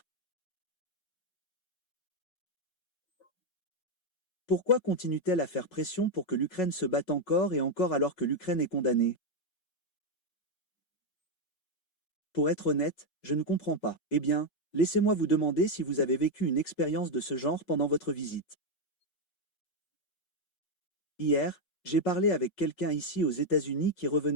Pourquoi continuent-elles à faire pression pour que l'Ukraine se batte encore et encore alors que l'Ukraine est condamnée? Pour être honnête, je ne comprends pas. Eh bien, laissez-moi vous demander si vous avez vécu une expérience de ce genre pendant votre visite. Hier, j'ai parlé avec quelqu'un ici aux États-Unis qui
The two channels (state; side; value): late; right; 5.4 ms